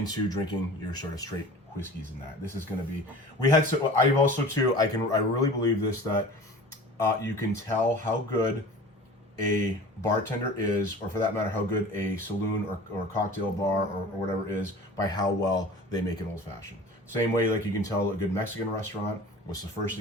drinking your sort of straight whiskeys and that. This is going to be, I've also too, I really believe this, that you can tell how good a bartender is, or for that matter, how good a saloon or cocktail bar or whatever is by how well they make an old fashioned. Same way, like you can tell a good Mexican restaurant, what's the first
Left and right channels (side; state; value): both; normal; correlation 0.41